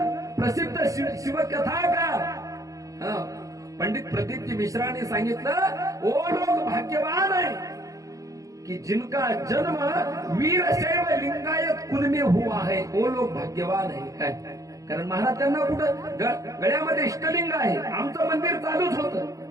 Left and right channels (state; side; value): late; left; 0.16 ms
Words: प्रसिद्ध शिवकथाकार पंडित प्रदीपजी मिश्रांनी सांगितलं, ओ लोग भाग्यवान है कि जिनका जन्म वीरशैव लिंगायत कुल में हुआ है, वो लोग भाग्यवान है काय. कारण महाराज त्यांना कुठं गळ्यामध्ये इष्टलिंग आहे. आमचं मंदिर चालूच होतं